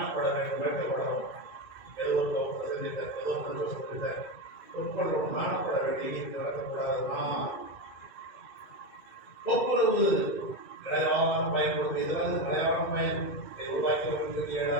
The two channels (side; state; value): right; late; 2.3 ms